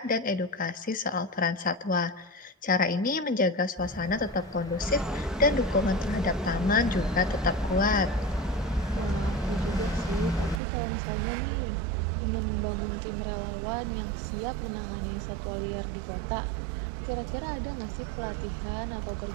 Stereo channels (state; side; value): drops out; left; at 10.6 s